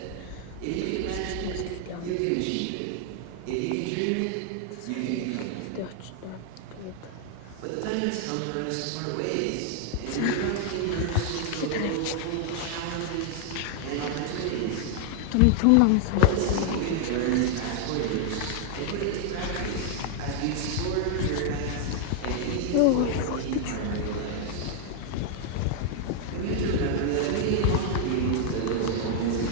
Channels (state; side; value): different; both; correlation 0.00